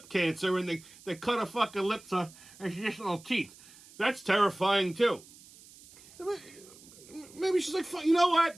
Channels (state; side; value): noise; right; hiss, 22 dB below the sound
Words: cancer and they cut her fucking lips off and she just no teeth. That's terrifying too. Maybe she's like, you know what?